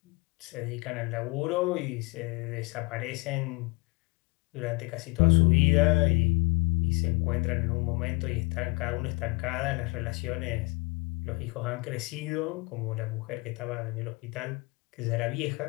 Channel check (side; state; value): right; quieter; 27.8 dB